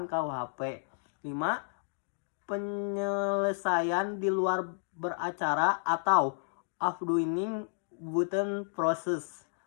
KUHP. 5. Penyelesaian di luar beracara atau afdoing within process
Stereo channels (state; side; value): silent; right; digital silence